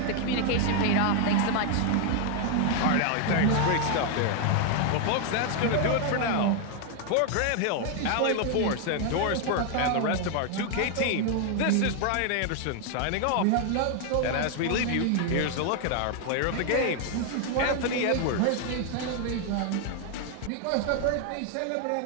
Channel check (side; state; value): both; different; correlation 0.00